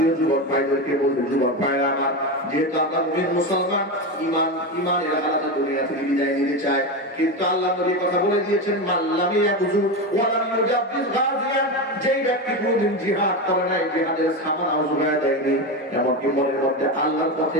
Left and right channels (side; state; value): both; normal; correlation 0.17